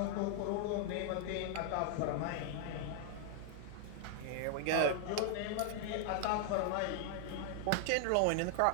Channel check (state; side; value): different; both; correlation 0.00